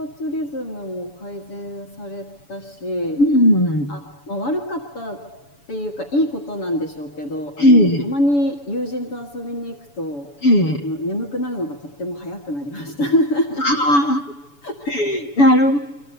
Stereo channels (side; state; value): right; late; 7.0 ms